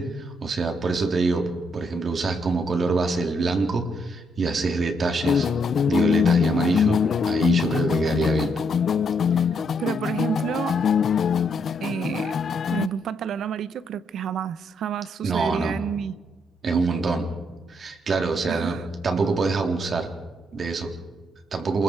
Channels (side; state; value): both; normal; correlation 0.75